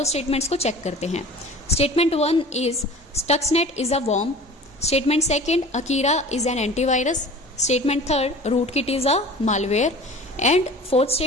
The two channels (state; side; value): normal; both; correlation 0.41